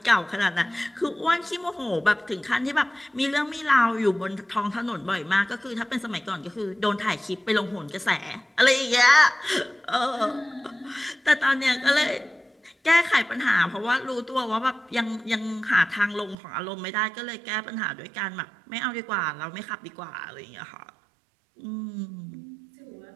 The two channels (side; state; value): left; drops out; at 16.4 s